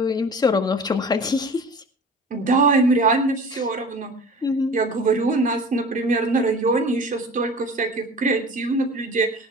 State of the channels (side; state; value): both; normal; correlation 0.40